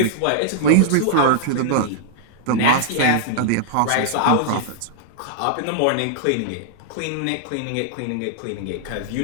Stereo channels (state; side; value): different; both; correlation -0.01